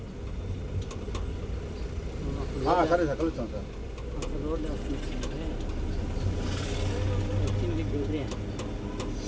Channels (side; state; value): both; identical; correlation 1.00